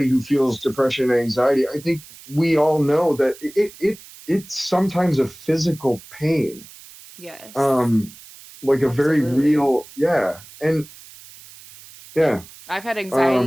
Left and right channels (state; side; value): noise; right; hiss, 20 dB below the sound